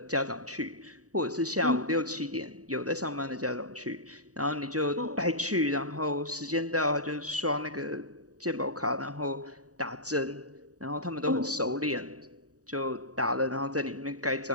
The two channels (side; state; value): left; late; 0.66 ms